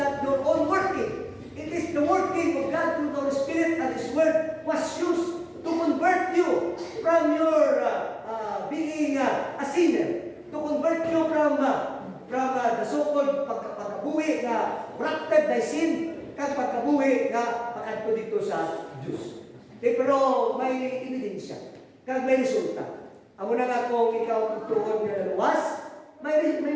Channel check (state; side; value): identical; both; correlation 1.00